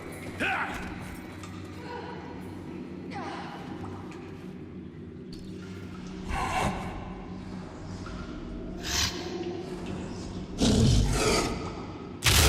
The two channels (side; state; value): both; identical; correlation 1.00